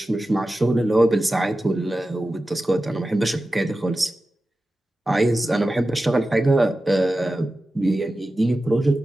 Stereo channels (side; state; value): both; normal; correlation 0.94